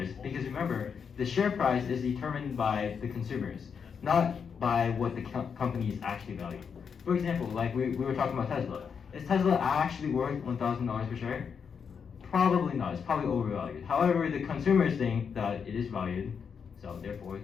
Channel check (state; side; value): quieter; right; 6.5 dB